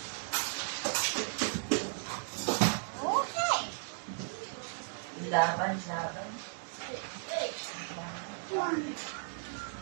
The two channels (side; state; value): left; silent; digital silence